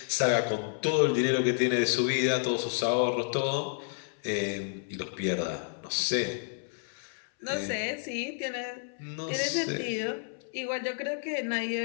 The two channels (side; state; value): right; silent; 58 dB below the other